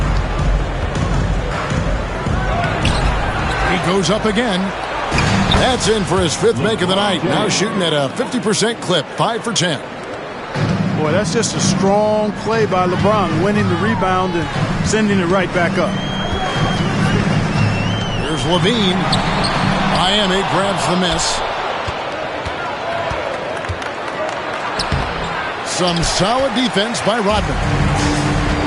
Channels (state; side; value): identical; both; correlation 1.00